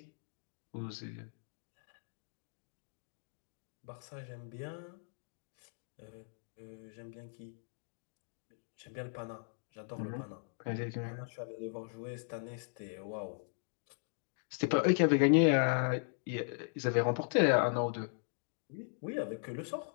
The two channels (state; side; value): silent; right; digital silence